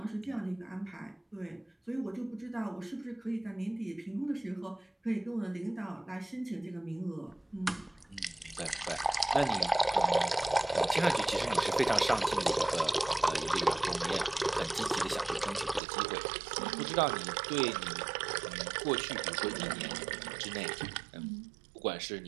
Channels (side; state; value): left; drops out; at 15.8 s